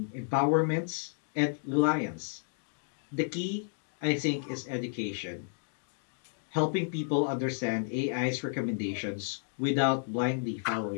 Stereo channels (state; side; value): silent; right; digital silence